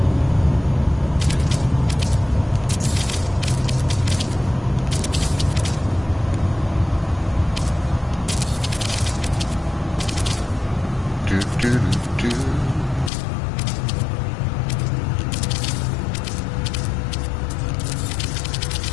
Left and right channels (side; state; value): right; drops out; at 13.1 s